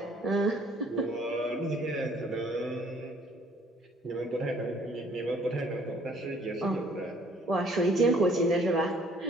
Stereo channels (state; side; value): normal; both; correlation 0.59